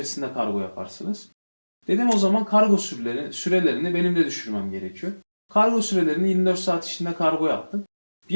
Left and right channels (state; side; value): inverted; both; correlation -1.00